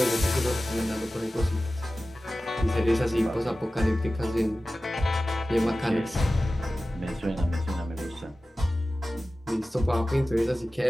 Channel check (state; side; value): normal; both; correlation 0.96